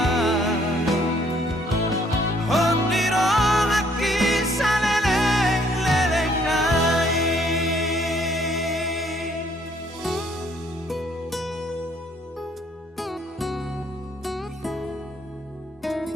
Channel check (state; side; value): normal; both; correlation 0.64